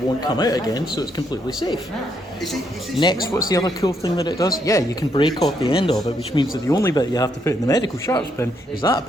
come out again, so it's completely safe. Next, what's the other cool thing that it does? Yeah, you can break off the end of it, which means that the only bit you have to put in the medical sharps bin is that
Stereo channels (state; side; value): normal; both; correlation 0.75